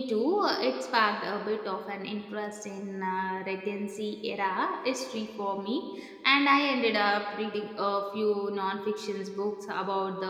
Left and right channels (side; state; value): both; identical; correlation 1.00